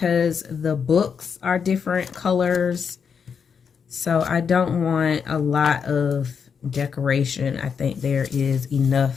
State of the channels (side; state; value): right; quieter; 6.5 dB